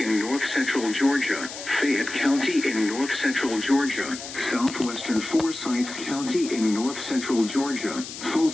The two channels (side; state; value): left; noise; hiss, 10 dB below the sound